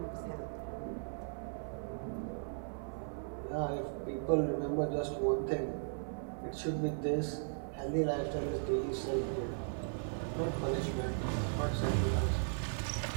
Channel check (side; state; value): left; silent; 53 dB below the other